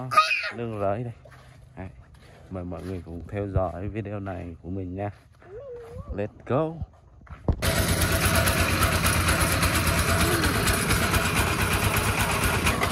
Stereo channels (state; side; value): identical; both; correlation 1.00